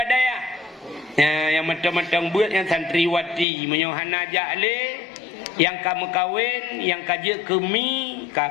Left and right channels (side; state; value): right; drops out; at 3.5 s